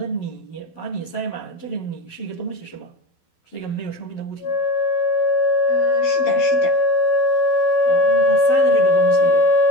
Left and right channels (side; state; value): right; late; 12 ms